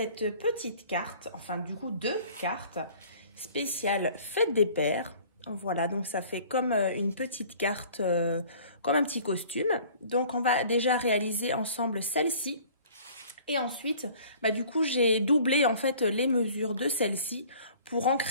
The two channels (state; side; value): inverted; both; correlation -0.50